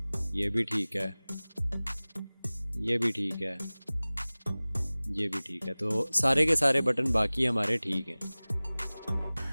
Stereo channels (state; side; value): inverted; both; correlation -0.99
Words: ये भी ठीक है, ये भी ठीक है, ये भी ठीक है। तो सारे के सारे बटन बाकी हमारे ठीक हैं।